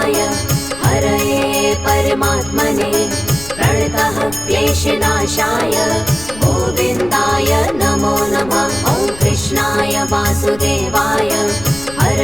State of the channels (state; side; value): noise; left; rumble, 17 dB below the sound